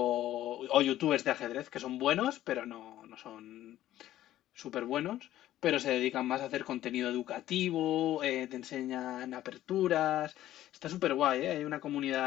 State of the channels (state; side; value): quieter; right; 13.5 dB